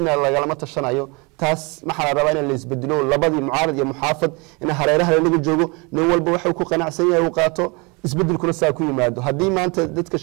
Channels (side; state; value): left; quieter; 28.9 dB